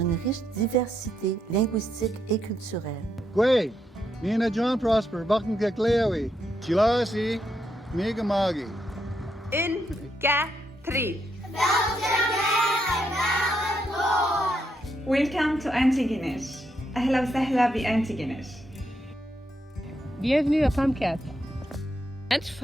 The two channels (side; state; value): both; normal; correlation 0.79